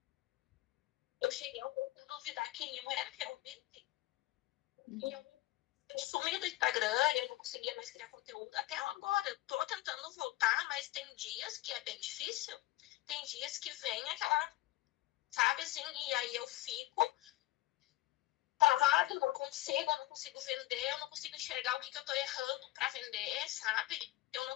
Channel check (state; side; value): quieter; right; 17.1 dB